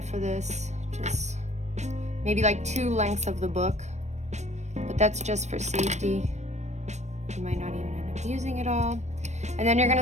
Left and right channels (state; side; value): late; left; 0.33 ms